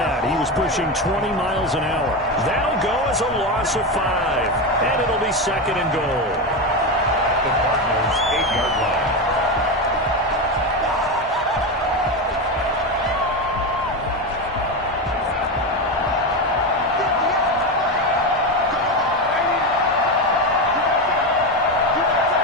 He was pushing 20 miles an hour. That'll go as a loss of 5. And it'll be second and goal. The Cardinals' 8-yard line.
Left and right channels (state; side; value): normal; both; correlation 0.15